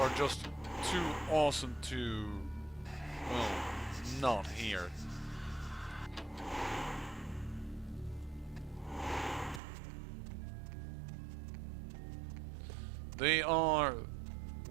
just too awesome to, well, not hear. They are,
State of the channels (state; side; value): drops out; left; at 9.6 s